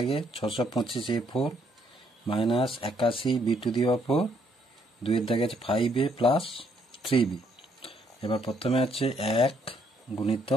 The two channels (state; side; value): normal; both; correlation 0.70